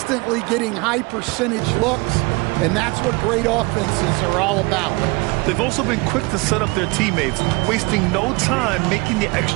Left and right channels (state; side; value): quieter; left; 25.6 dB